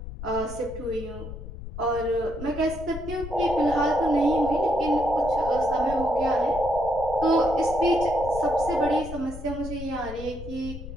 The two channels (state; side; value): noise; left; rumble, 11 dB below the sound